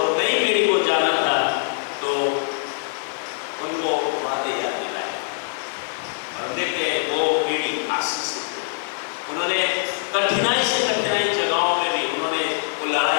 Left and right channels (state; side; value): silent; right; 63 dB below the other